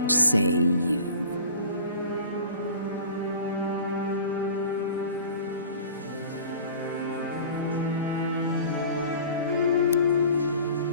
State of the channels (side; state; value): both; inverted; correlation -0.43